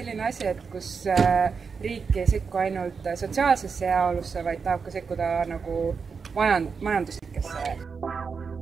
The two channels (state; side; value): quieter; left; 5.5 dB